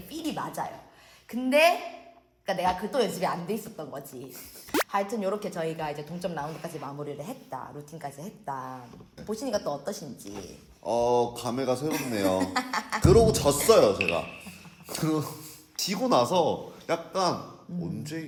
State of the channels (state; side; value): identical; both; correlation 1.00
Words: 필이 맞아요. 근데 그러니까 내가 그 또 연습이 안 돼 있었던 거지. 하여튼 이렇게 저희가 이제 동점 라운드까지 마무리를 했다. 루틴까지 했다. 보시니까 또 어떠신지. 감회가 새롭네요. 그러고 졌어요 제가. 지고 나서 약간 언제